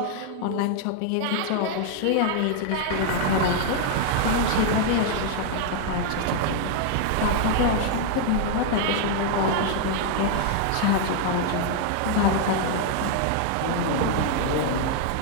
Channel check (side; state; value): both; different; correlation 0.00